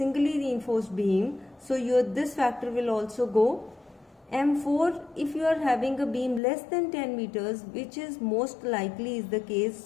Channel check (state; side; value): drops out; right; at 6.4 s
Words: reinforced beam, so your this factor will also go. M4, if you are having a beam less than 10 meters, which is most likely is the case,